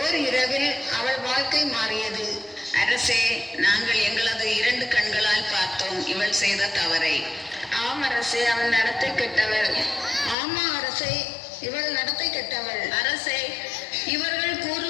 இரவில் அவள் வாழ்க்கை மாறியது. அரசே, நாங்கள் எங்களது 2 கண்களால் பார்த்தோம் இவள் செய்த தவறை. ஆம் அரசே, அவள் நடத்தை கெட்டவள். ஆமா அரசே, இவள் நடத்தை கெட்டவள். அரசே, இவர்கள்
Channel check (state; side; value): drops out; right; at 10.4 s